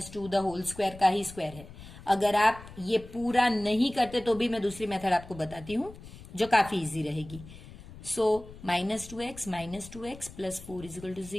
2 the whole square का ही स्क्वायर है। अगर आप ये पूरा नहीं करते तो भी मैं दूसरी मेथड आपको बताती हूँ जो काफी इजी रहेगी। So -2x plus 4 is equal to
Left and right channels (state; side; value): noise; left; rumble, 17 dB below the sound